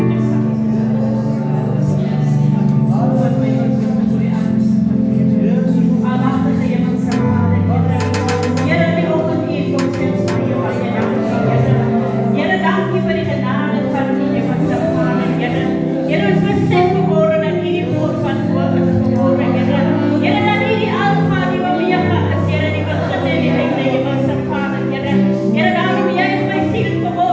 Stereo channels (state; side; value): identical; both; correlation 1.00